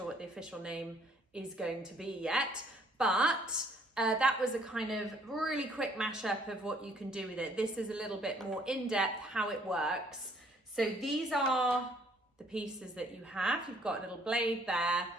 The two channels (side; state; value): both; normal; correlation 0.62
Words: what the official name is going to be yet, but that was a kind of really quick mashup of what you can do with it. This is a little bit more in-depth how it works. So these are the pieces that you have. You've got a little blade there.